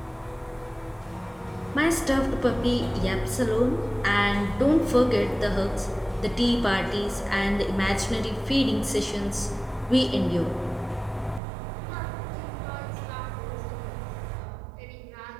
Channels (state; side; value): drops out; left; at 11.4 s